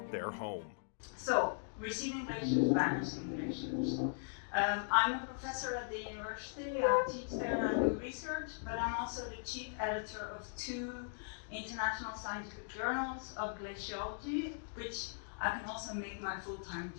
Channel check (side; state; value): right; silent; digital silence